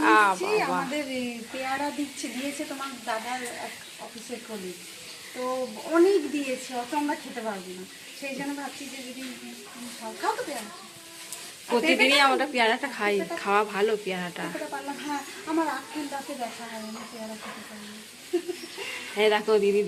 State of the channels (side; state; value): both; identical; correlation 1.00